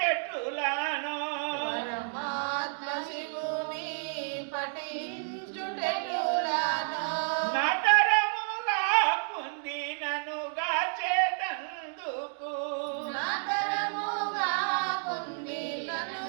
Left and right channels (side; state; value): left; silent; 57 dB below the other